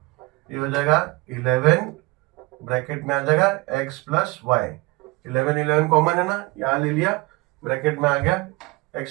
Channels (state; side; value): quieter; left; 23.7 dB